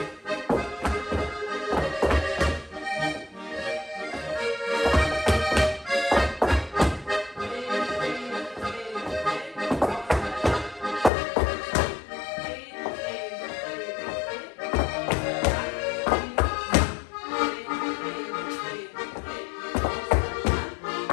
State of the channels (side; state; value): right; drops out; at 11.1 s